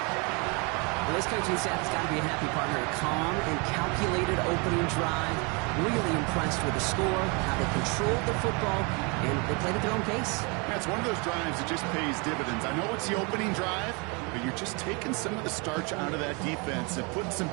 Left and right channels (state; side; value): quieter; left; 31.2 dB